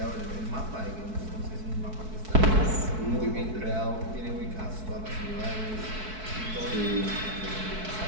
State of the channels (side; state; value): left; late; 4.6 ms